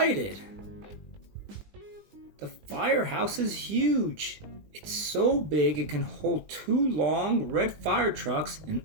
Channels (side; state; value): left; late; 20 ms